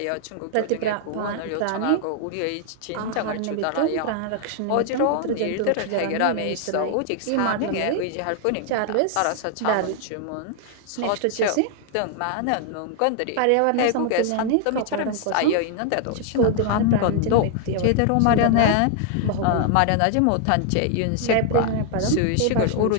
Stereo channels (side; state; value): both; different; correlation 0.00